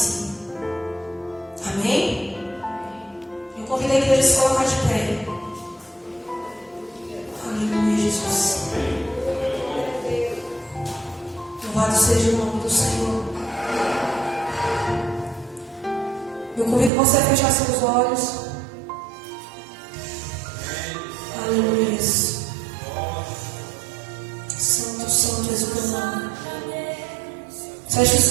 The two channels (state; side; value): drops out; left; at 16.9 s